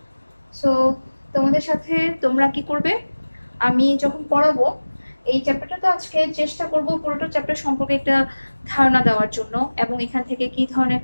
সো তোমাদের সাথে তোমরা কি করবে, আমি যখন পড়াবো এই চ্যাপ্টারটা, তো আজকে চেষ্টা করব পুরোটা চ্যাপ্টার সম্পর্কে একটা ধারণা দেওয়ার জন্য, এবং এখান থেকে কি ধরনের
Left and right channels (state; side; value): inverted; both; correlation -1.00